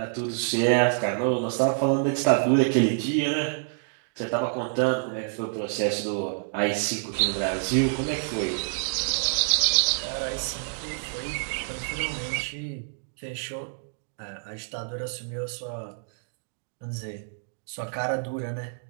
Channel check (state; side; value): silent; left; digital silence